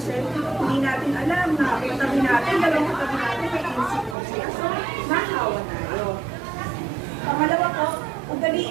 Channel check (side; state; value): left; drops out; at 4.2 s